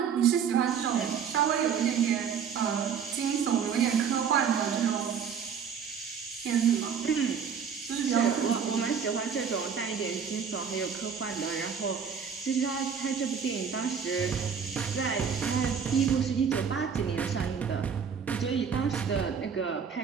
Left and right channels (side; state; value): left; quieter; 6.9 dB